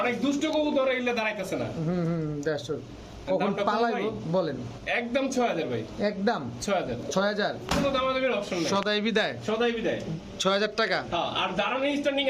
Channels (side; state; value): both; identical; correlation 1.00